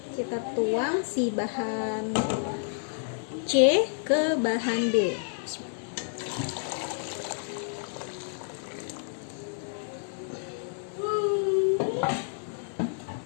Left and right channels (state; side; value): silent; right; digital silence